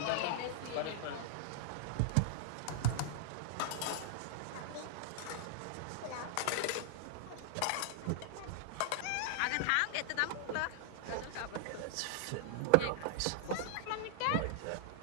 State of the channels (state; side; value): different; both; correlation -0.01